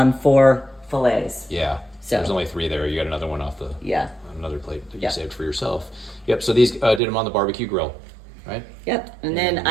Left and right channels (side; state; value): left; drops out; at 7.0 s